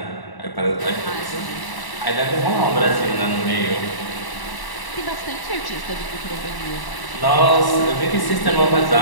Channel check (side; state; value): right; late; 1.0 ms